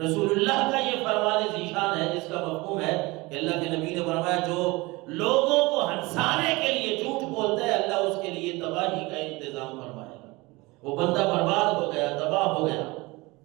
اللہ کا یہ فرمان ذیشان ہے، جس کا مفہوم ہے کہ اللہ کے نبی نے فرمایا جو لوگوں کو ہنسانے کے لیے جھوٹ بولتا ہے، اللہ اس کے لیے تباہی کا انتظام فرمائے گا، وہ بندہ برباد ہو گیا، تباہ ہو گیا۔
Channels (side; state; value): left; quieter; 23.0 dB